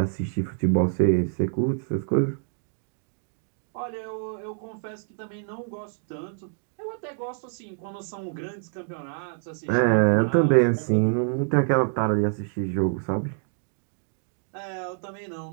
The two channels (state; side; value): silent; left; 60 dB below the other